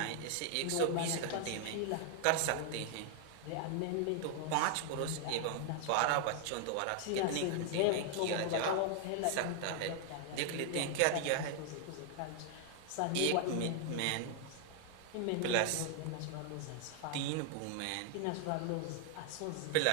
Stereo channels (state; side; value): different; both; correlation 0.00